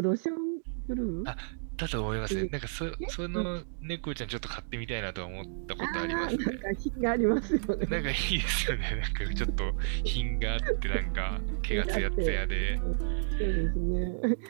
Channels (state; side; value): silent; left; digital silence